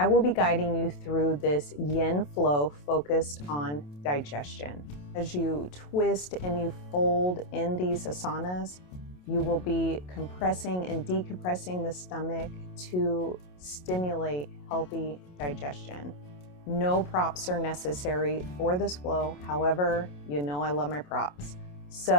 will be guiding you through this yin flow focused on digestion. As you twist and you fold in these asanas, you will be compressing and decompressing the stomach to stimulate healthy digestion. No props are necessary for this flow. However, you know I love my props.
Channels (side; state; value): right; late; 27 ms